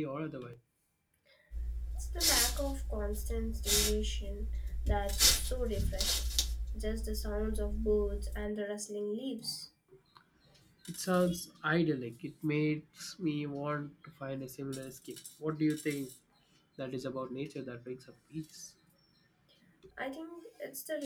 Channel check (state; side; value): identical; both; correlation 1.00